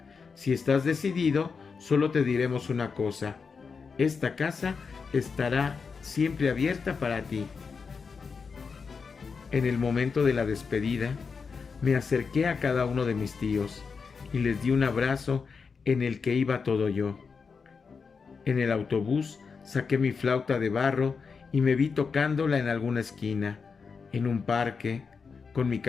Si estás decidido, solo te diremos una cosa. Esta casa estará siempre abierta para ti. En el momento de la despedida, me acerqué a cada uno de mis tíos y les di un abrazo en el que iba todo yo. En el autobús saqué mi flauta de barro y me vi tocándola en alguna esquina, en un parque, con mi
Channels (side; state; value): right; quieter; 5.3 dB